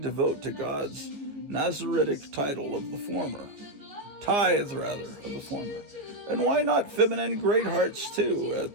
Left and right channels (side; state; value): left; late; 14 ms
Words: to God's Nazaritic title of the former. Tithe, rather, of the former. And why not feminine great hearts, too,